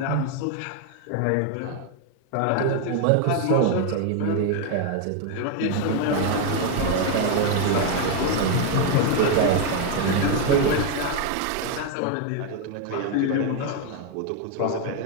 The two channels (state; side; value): different; both; correlation 0.01